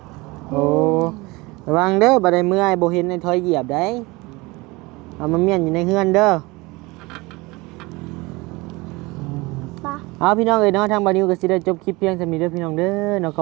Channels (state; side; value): quieter; left; 23.5 dB